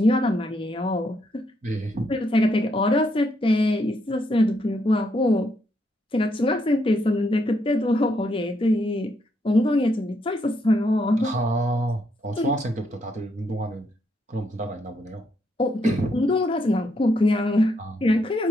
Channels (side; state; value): both; normal; correlation 0.76